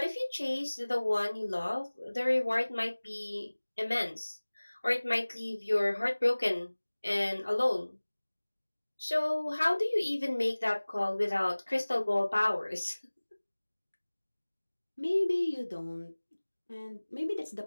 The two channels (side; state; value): both; inverted; correlation -1.00